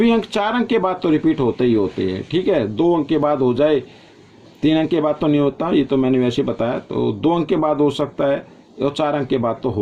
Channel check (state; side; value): identical; both; correlation 1.00